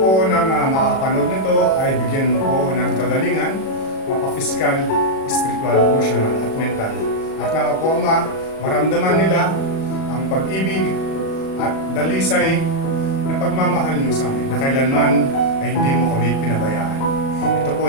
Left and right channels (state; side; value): late; right; 37 ms